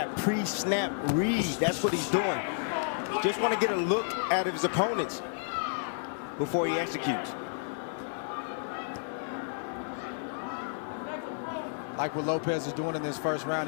pre-snap read, that's what he's doing. Just want to get a look at his opponents before he executes. Like what Lopez is doing in this first round,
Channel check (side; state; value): right; silent; 56 dB below the other